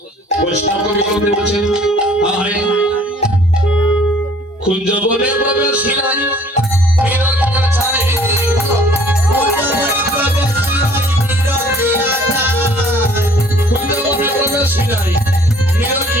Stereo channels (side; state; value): both; normal; correlation 0.55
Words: বৈষ্ণব কবি বলছেন আয় কুঞ্জ বনে প্রবেশিলাই বিরকিয়া ছাই কুঞ্জ বনে প্রবেশিলাই